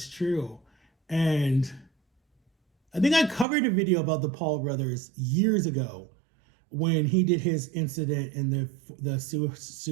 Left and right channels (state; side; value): drops out; left; at 3.5 s